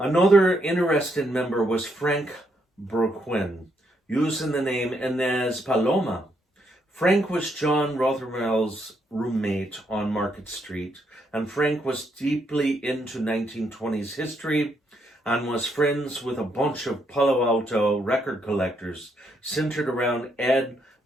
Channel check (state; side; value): normal; both; correlation 0.76